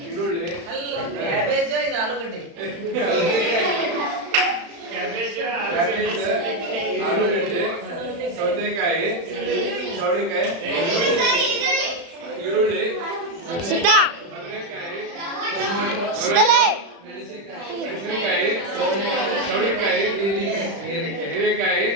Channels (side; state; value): left; late; 35 ms